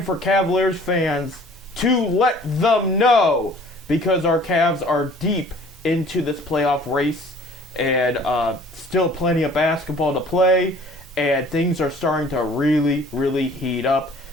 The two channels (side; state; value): both; normal; correlation 0.51